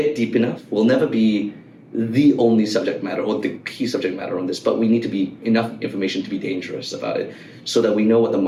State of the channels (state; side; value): identical; both; correlation 1.00